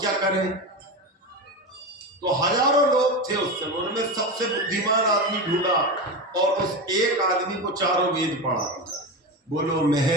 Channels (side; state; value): both; normal; correlation 0.20